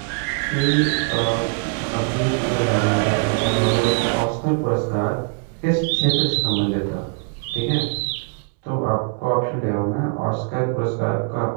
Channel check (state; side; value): quieter; left; 36.2 dB